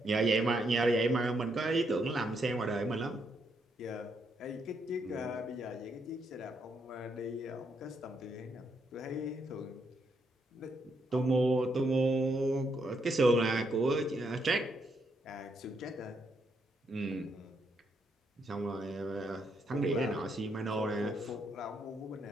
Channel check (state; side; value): normal; both; correlation 0.77